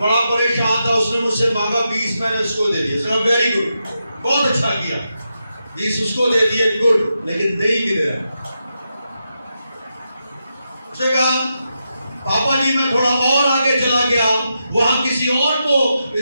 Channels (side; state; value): both; inverted; correlation -0.86